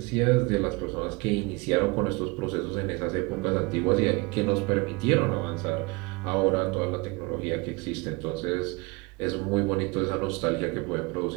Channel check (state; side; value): quieter; left; 26.3 dB